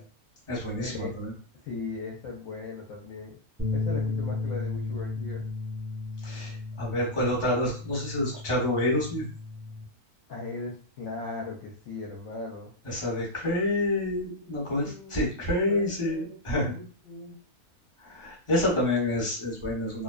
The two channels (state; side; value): normal; both; correlation -0.03